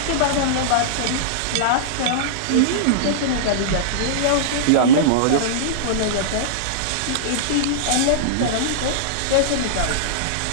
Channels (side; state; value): both; different; correlation -0.03